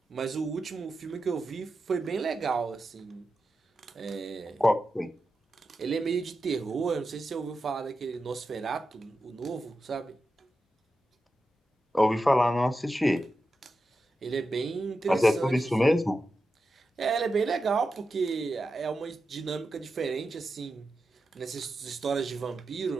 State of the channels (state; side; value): normal; both; correlation 0.90